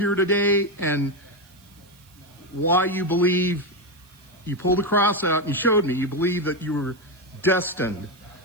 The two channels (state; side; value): noise; right; hiss, 28 dB below the sound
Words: today and why you believe you pulled a cross out and you showed me you believe that you were destined